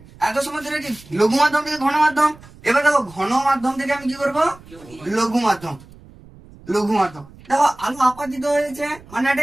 এত সময় ধরে কি লঘু মাধ্যম থেকে ঘন মাধ্যম, এবার দেখো ঘন মাধ্যম থেকে আমি কি করবো, লঘু মাধ্যম, লঘু মাধ্যম। দেখো আলো আপাতিত হয়েছে মানে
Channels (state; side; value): noise; right; rumble, 22 dB below the sound